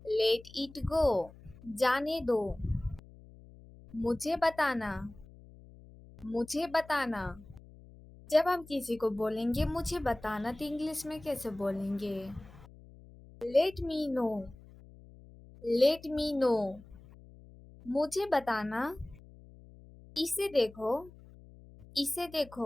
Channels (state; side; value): noise; left; hum, 21 dB below the sound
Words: let it go. जाने दो। मुझे बताना, मुझे बताना। जब हम किसी को बोलेंगे मुझे बताना तो इंग्लिश में कैसे बोलेंगे? Let me know, let me know. मुझे बताना। इसे देखो, इसे